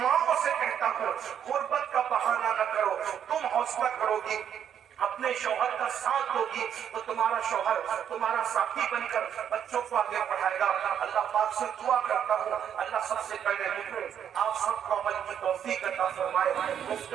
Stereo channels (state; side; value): quieter; left; 8.9 dB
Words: سے کہتا ہوں، غربت کا بہانہ نہ کرو، تم حوصلہ کرو گی، اپنے شوہر کا ساتھ ہوگی تو تمہارا شوہر تمہارا ساتھی بن کر بچوں کو آگے پڑھائے گا۔ اللہ پاک سے دعا کرتا ہوں، اللہ سب سے پہلے مجھے آپ سب کو عمل کی توفیق عطا فرمائے۔